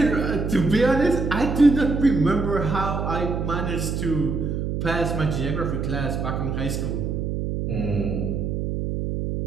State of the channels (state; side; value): noise; right; hum, 2 dB below the sound